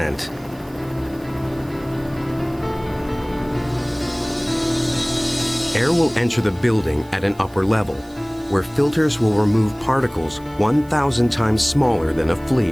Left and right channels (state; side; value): noise; right; hiss, 26 dB below the sound